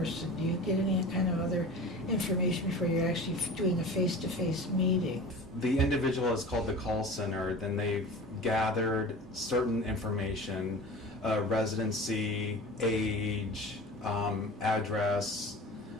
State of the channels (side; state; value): both; normal; correlation 0.36